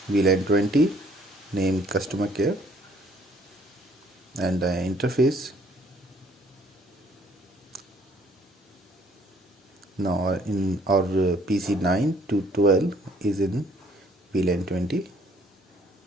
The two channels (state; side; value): normal; both; correlation 0.62